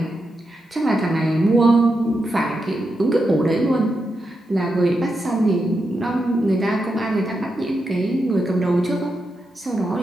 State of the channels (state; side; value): normal; both; correlation 0.86